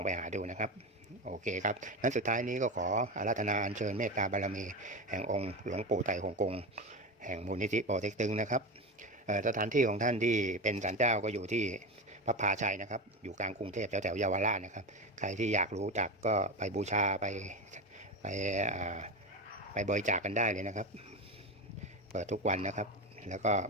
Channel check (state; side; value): normal; both; correlation 0.20